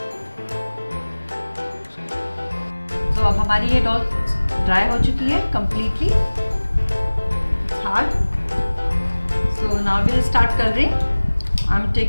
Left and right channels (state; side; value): inverted; both; correlation -1.00